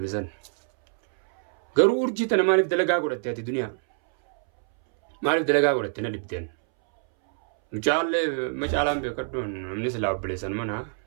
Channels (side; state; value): left; silent; 61 dB below the other